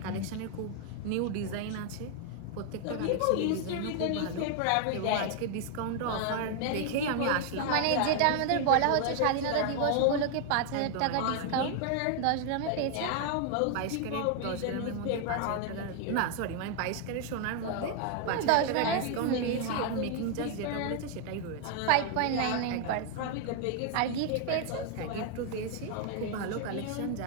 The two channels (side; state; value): both; different; correlation 0.00